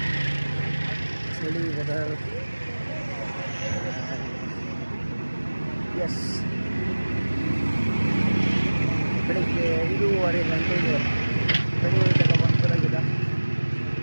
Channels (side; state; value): both; inverted; correlation -1.00